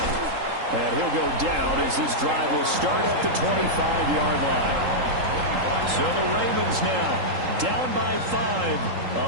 And he'll go down as this drive will start at the 25-yard line. So the Ravens now down by 5.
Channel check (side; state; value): left; late; 3.8 ms